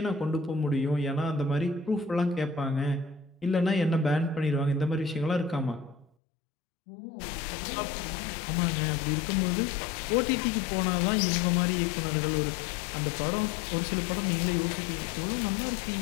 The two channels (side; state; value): right; drops out; at 6.1 s